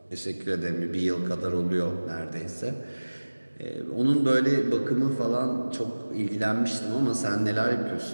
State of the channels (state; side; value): inverted; both; correlation -1.00